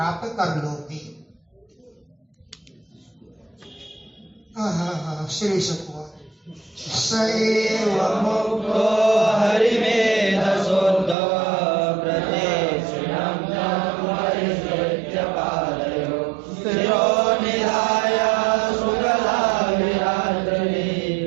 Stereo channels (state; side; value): drops out; left; at 11.2 s